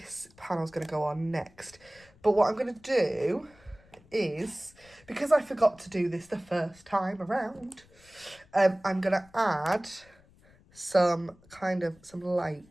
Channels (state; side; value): noise; left; rumble, 28 dB below the sound